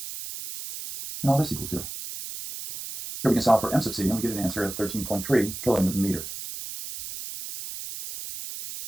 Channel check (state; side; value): noise; right; hiss, 9 dB below the sound